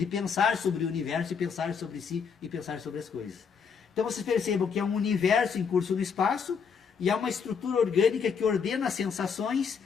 pensar sobre o universo e pensar sobre si e pensar sobre as coisas. Então vocês percebam que é um universo em curso no espaço e é uma estrutura orgânica que ordena as sensações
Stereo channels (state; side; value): quieter; right; 6.3 dB